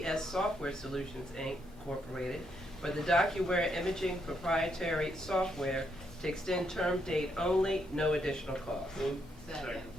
Software Solutions Incorporated for the DocuWare imaging proprietary software to extend term date only, no additional cost. Move. Second.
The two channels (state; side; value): normal; both; correlation 0.77